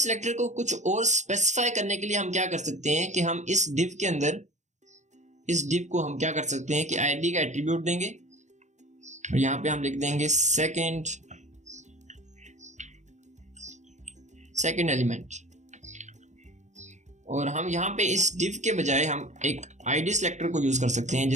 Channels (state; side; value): late; left; 0.34 ms